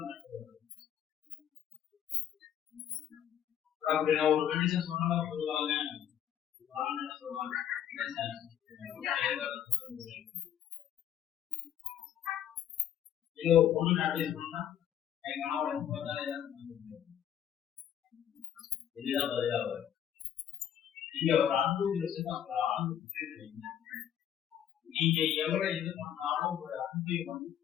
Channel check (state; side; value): quieter; right; 10.0 dB